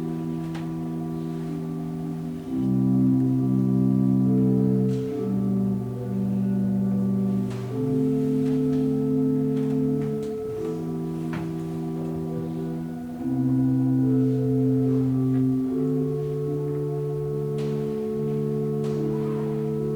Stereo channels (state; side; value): identical; both; correlation 1.00